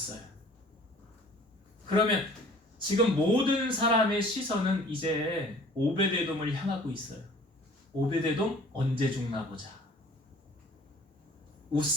그러면 지금 모든 사람의 시선은 이제 오베데돔을 향하고 있어요. 오베데돔 언제 죽나 보자.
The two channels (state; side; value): normal; both; correlation 0.50